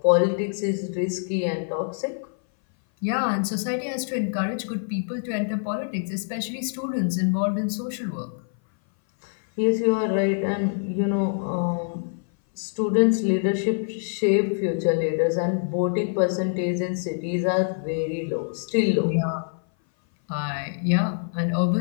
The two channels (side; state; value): right; silent; 59 dB below the other